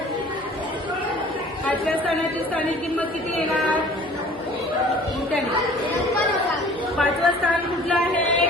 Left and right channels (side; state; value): both; normal; correlation 0.49